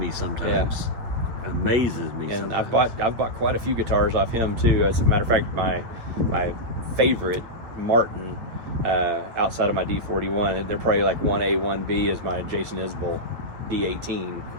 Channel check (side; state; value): left; late; 8.9 ms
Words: sometimes. Yeah. Amazes me. And sometimes. I've bought quite a few guitars off him too. As a matter of fact, my favorite Martin outside of my D41, they're probably like 1A, 1B, is my Jason Isbell D18